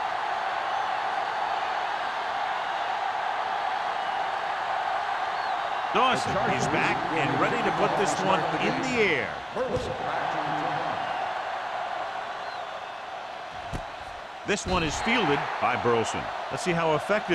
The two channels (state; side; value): identical; both; correlation 1.00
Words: Dawson is back and ready to put this one in the air. This one is fielded by Burleson. Let's see how